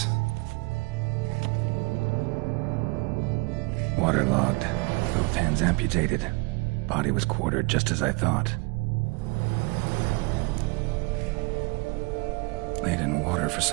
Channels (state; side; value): quieter; left; 28.6 dB